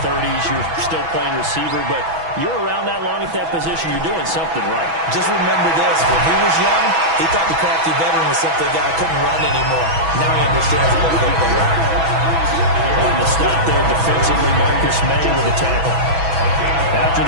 30s, you're still playing receiver, but you're around that long at that position, you're doing something right. Just remember this, when he was young, he thought the crafty veteran was simply a guy who couldn't run anymore. Now he understands a little bit better. On the stop there defensively, Marcus May with a tackle. After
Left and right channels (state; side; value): late; left; 6.1 ms